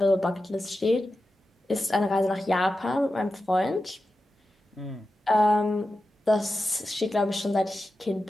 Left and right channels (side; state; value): both; normal; correlation 0.92